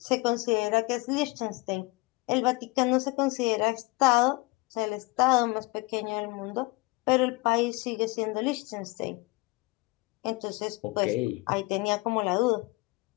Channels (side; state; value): right; quieter; 25.1 dB